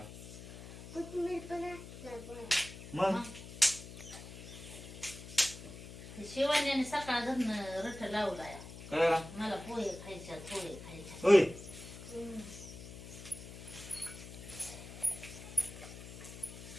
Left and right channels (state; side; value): noise; left; hum, 13 dB below the sound